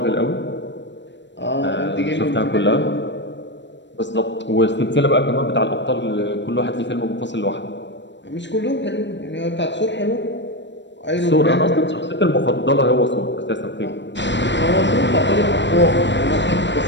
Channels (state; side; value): late; right; 0.53 ms